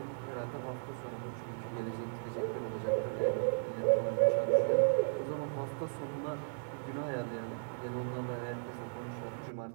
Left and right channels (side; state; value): left; silent; 54 dB below the other